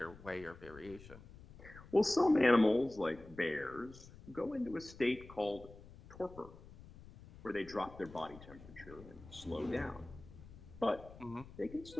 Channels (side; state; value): left; noise; rumble, 18 dB below the sound